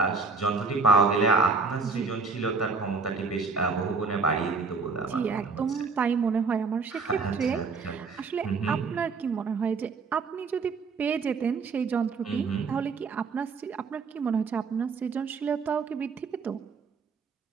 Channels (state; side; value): quieter; left; 4.6 dB